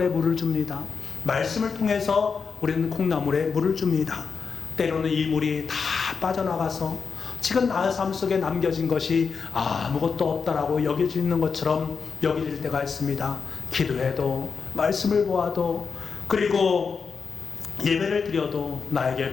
물을 줍니다. 말씀을 통해서 우리는 콩나물에 물을 줍니다. 때로는 이 물이 다 빠져나가서 지금 나의 삶 속에 남겨진 것이 아무것도 없다라고 여겨지는 것처럼 여겨질 때가 있습니다. 기도해도, 말씀을 보아도, 그리고 예배를 드려도 나에게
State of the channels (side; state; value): right; quieter; 5.4 dB